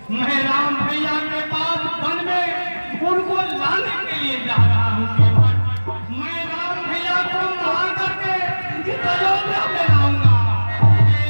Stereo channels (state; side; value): inverted; both; correlation -1.00